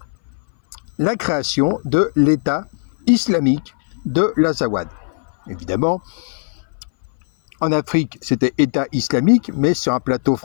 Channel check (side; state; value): right; silent; 62 dB below the other